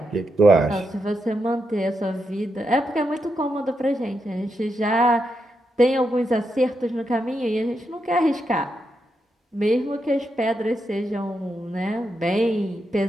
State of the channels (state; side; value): normal; both; correlation 0.84